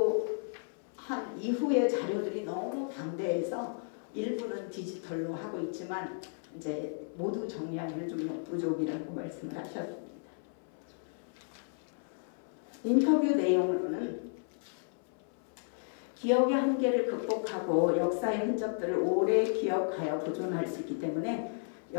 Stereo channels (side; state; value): right; silent; 55 dB below the other